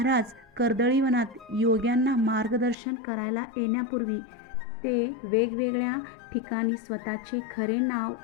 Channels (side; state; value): right; drops out; at 2.8 s